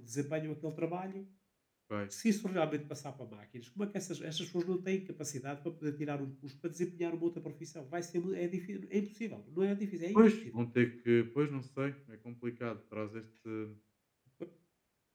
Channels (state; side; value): identical; both; correlation 1.00